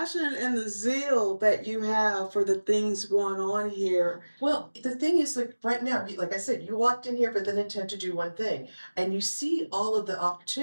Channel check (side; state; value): both; inverted; correlation -1.00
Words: and the zeal that you have for the things going on here. Well, the thing is, like right now, like I said, you walked in here with an intent to do one thing, and you see all of the